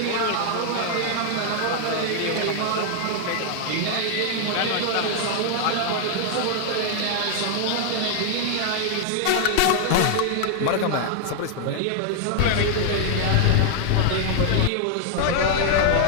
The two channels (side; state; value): both; different; correlation 0.00